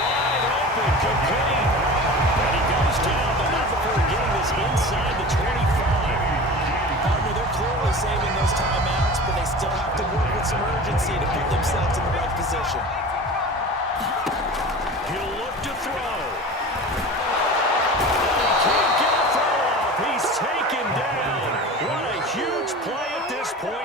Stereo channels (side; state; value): both; normal; correlation 0.35